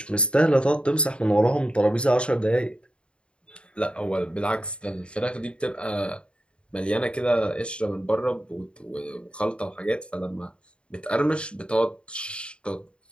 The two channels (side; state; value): right; late; 0.055 ms